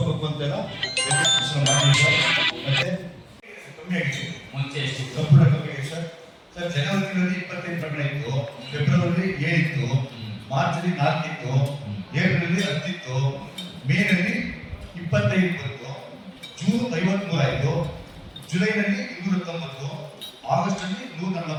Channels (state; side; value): identical; both; correlation 1.00